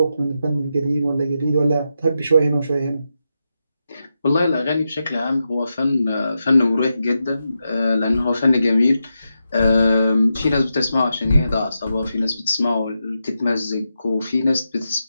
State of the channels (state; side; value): inverted; both; correlation -0.87